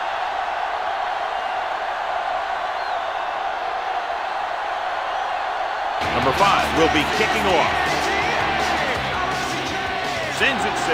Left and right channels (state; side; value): identical; both; correlation 1.00